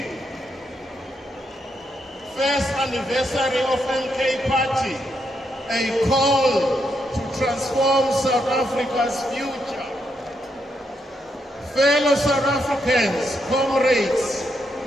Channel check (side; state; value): both; normal; correlation 0.80